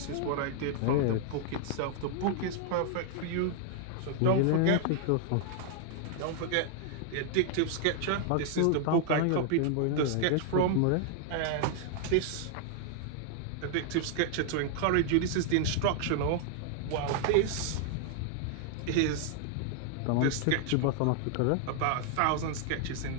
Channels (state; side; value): different; both; correlation 0.00